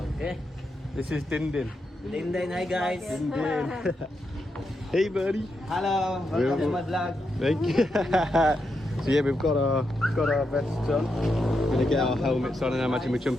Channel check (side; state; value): both; normal; correlation 0.84